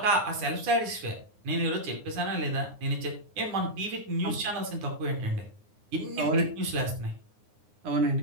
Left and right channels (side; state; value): left; late; 9.7 ms